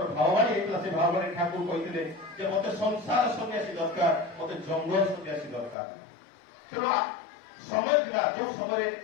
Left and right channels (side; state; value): right; drops out; at 5.8 s